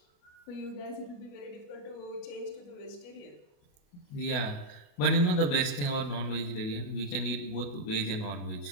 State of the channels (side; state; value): right; late; 28 ms